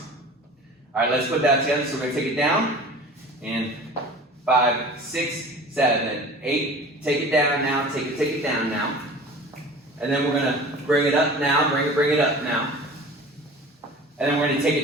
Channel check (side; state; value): both; normal; correlation 0.40